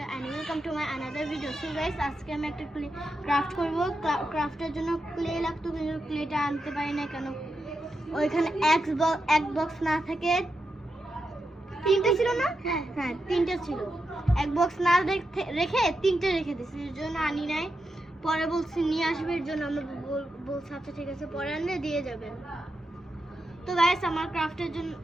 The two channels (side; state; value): both; normal; correlation 0.87